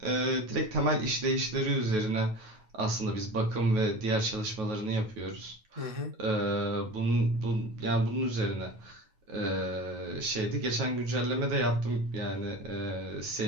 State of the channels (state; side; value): late; left; 9.3 ms